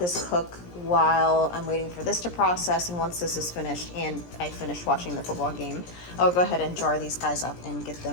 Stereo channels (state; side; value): late; right; 17 ms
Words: cook while I'm waiting for this to process, and once this is finished and I finish watching the football game, I'll go ahead and jar these guys up and get